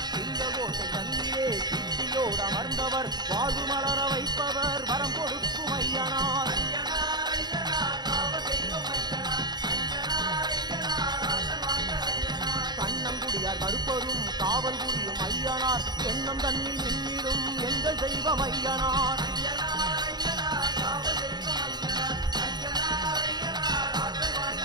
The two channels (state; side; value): late; left; 0.20 ms